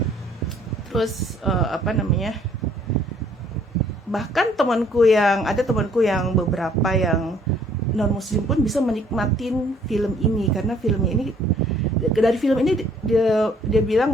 Terus bahkan temanku yang beberapa yang non muslim pun bisa menikmatin film ini, karena dari film ini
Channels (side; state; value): both; normal; correlation 0.62